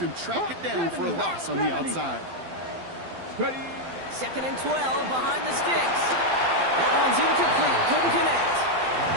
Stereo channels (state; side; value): late; left; 12 ms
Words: him track it down for a loss on the outside. Second and 12 behind the sticks. That one's incomplete. Couldn't connect.